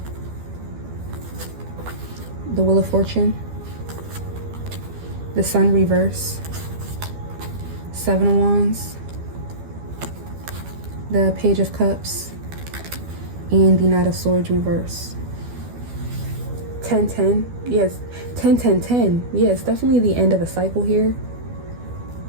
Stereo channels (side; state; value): left; late; 12 ms